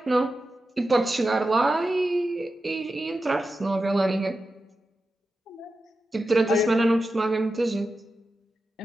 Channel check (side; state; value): both; normal; correlation 0.91